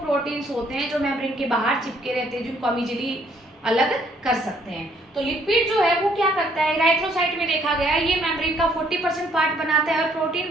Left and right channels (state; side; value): normal; both; correlation 0.65